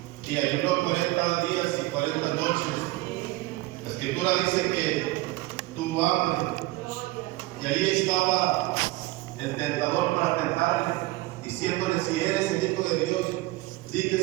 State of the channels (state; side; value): quieter; left; 19.8 dB